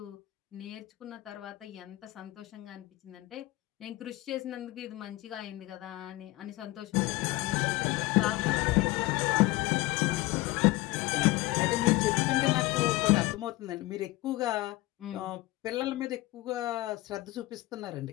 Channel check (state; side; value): quieter; right; 19.3 dB